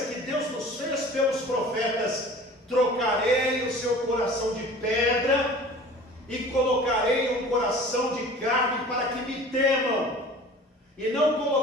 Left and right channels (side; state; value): both; normal; correlation 0.43